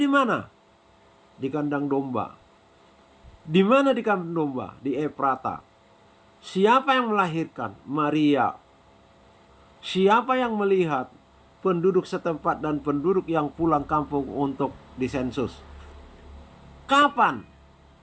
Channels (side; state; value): both; identical; correlation 1.00